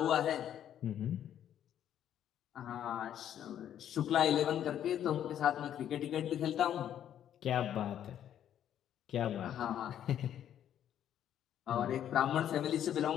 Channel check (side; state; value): right; quieter; 10.3 dB